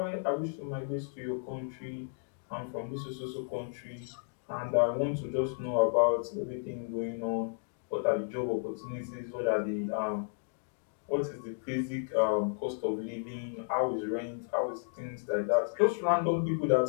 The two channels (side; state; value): right; silent; digital silence